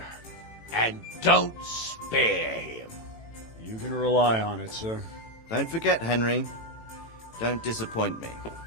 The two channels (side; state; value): right; late; 18 ms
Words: And don't spare him. You can rely on it, sir. Don't forget, Henry. Don't disappoint me.